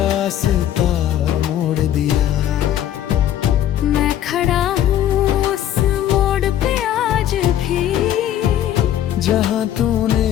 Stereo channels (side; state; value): right; quieter; 11.3 dB